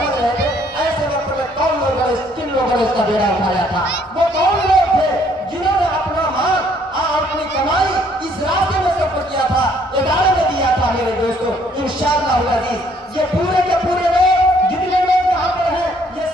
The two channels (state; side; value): normal; both; correlation 0.65